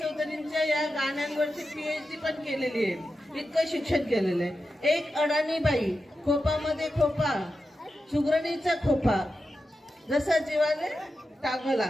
चौधरींच्या या गाण्यांवरची PhD पण केलेली आहे, इतकं शिक्षण केलेलं आहे. एक अडाणी बाई, खोपामध्ये खोपा, सुगरणीचा खोपा, जसा जीवाने टांगला,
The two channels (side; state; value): both; normal; correlation 0.90